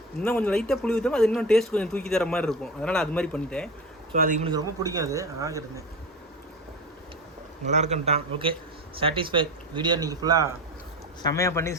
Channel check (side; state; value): both; normal; correlation 0.26